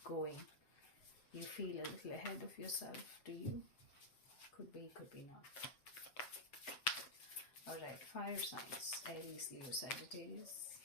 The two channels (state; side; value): late; right; 7.7 ms